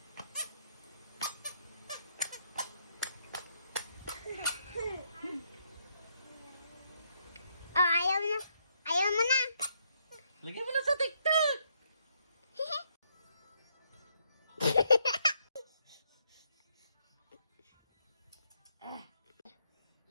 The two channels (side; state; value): both; inverted; correlation -0.74